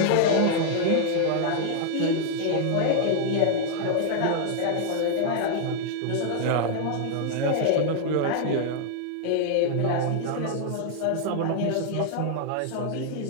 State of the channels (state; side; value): different; both; correlation 0.00